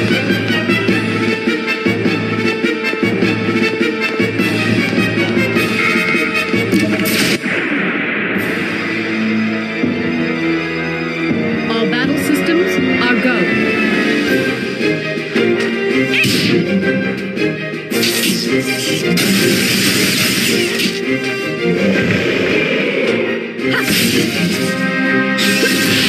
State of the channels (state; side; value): identical; both; correlation 1.00